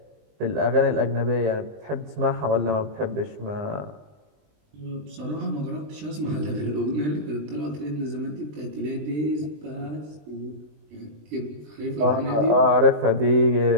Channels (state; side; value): late; left; 20 ms